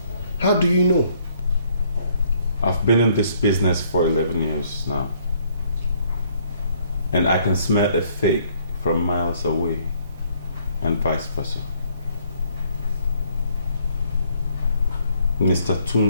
How do you know? I've been in this business for 11 years now. And I can smell a fake from miles away, and vice versa. Mr.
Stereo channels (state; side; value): inverted; both; correlation -0.65